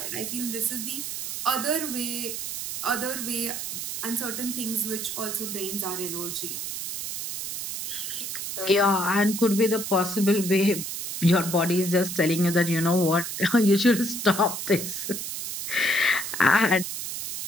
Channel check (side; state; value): right; noise; hiss, 5 dB below the sound